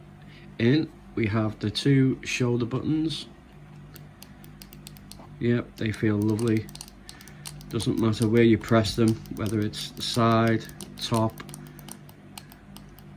in. We have the two shoulder buttons. Yep, they feel lovely. Doesn't matter where you press them, whether it's the side, top,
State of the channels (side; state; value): both; identical; correlation 1.00